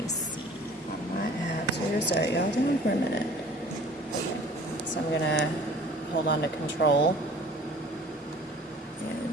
see on my apps here. Sorry, y'all, hold on for a minute. So I'm gonna hold on to control,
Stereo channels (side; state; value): both; normal; correlation 0.48